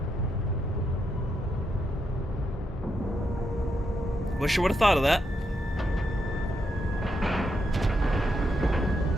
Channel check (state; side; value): normal; both; correlation 0.81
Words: Wish I would have thought of that.